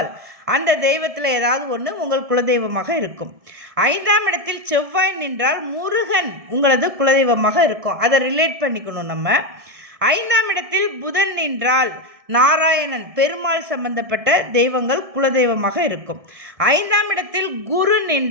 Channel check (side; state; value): left; late; 1.7 ms